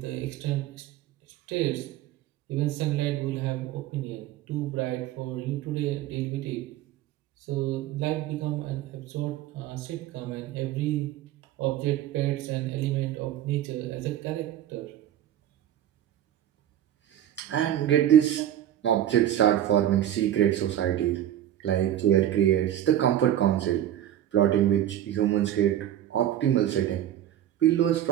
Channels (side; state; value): left; quieter; 11.7 dB